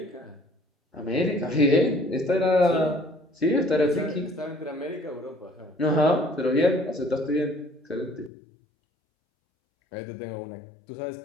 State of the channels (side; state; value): right; drops out; at 8.3 s